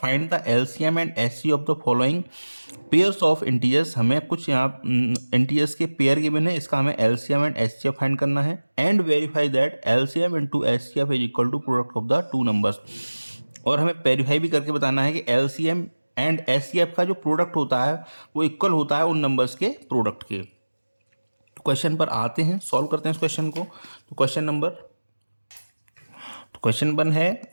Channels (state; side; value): inverted; both; correlation -1.00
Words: the LCM and HCF of the following pairs of integers. हमें कुछ यहाँ इंटीजर्स के पेयर गिवन है, इसका हमें एलसीएम एंड एचसीएफ फाइंड करना है and verify that LCM into HCF is equal to product of the two numbers. और हमें वेरीफाई भी करके बताना है कि एलसीएम एंड एचसीएफ का जो प्रोडक्ट होता है वो इक्वल होता है उन नंबर्स के प्रोडक्ट के। तो क्वेश्चन पर आते हैं, सॉल्व करते हैं इस क्वेश्चन को। तो क्वेश्चन 1 है,